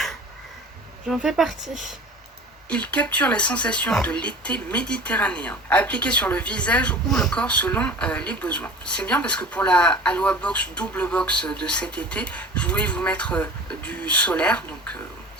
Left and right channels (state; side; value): normal; both; correlation 0.39